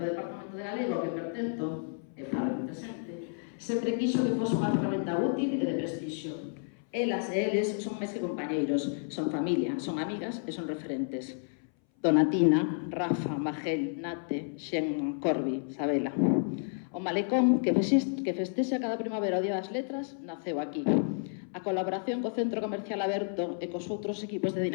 Departamento de Galego, que pertento, e falo presente, sempre quixo que fose unha ferramenta útil e de prestixio. Elas e eles son máis que compañeiros, son familia, son amigas e son referentes. Donatina, Rafa, Magel, Nate, Xen, Corbi, Sabela. O Malecón, que festexa cada primavera o Día das Letras, naceu aquí. A colaboración co Centro Comercial Aberto e cos outros equipos de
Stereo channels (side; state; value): right; silent; 57 dB below the other